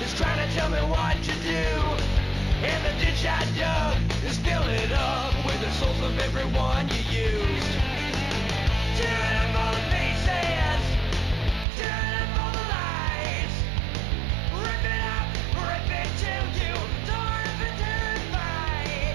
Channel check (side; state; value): left; drops out; at 11.7 s